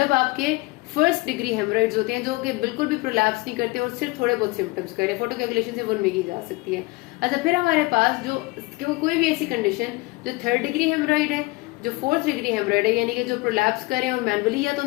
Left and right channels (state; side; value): quieter; right; 23.4 dB